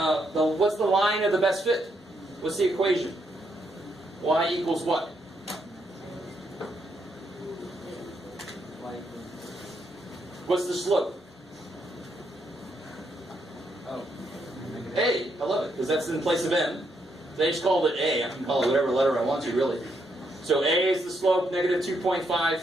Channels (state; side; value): normal; both; correlation 0.77